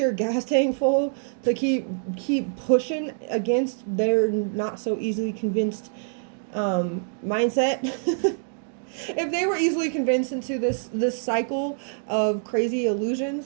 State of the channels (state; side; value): silent; left; digital silence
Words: gas tank full, to keep pushing against their not so easily convinced mindset. If they were easily convinced into this cycle of crazy